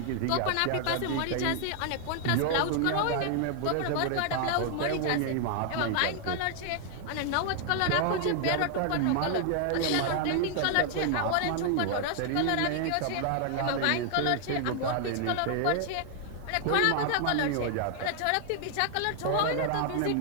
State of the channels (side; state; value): both; different; correlation 0.00